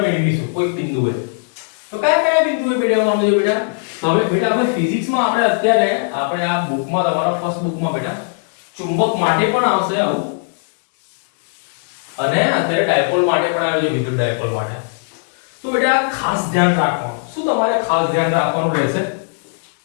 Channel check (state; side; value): silent; right; digital silence